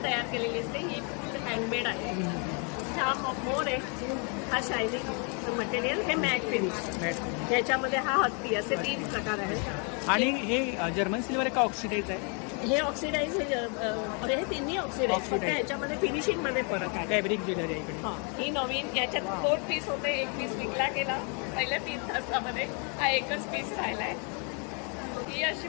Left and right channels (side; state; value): right; quieter; 36.9 dB